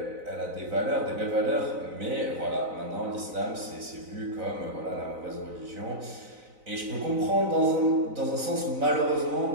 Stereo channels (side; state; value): left; late; 4.0 ms